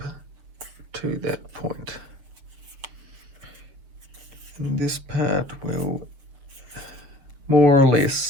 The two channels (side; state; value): left; late; 7.3 ms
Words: to that point. And this part will more or